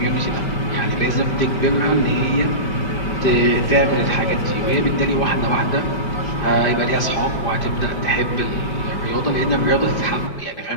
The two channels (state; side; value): late; right; 5.2 ms